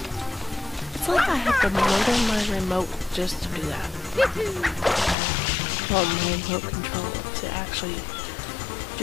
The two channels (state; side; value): drops out; right; at 5.2 s